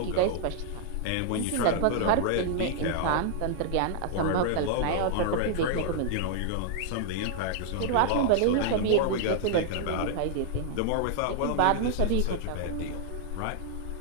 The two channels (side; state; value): both; different; correlation -0.01